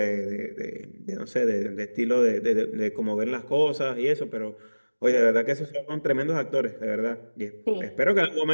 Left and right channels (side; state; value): both; inverted; correlation -1.00